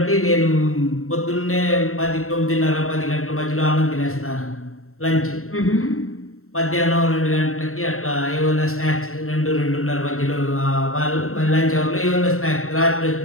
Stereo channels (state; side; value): late; right; 0.63 ms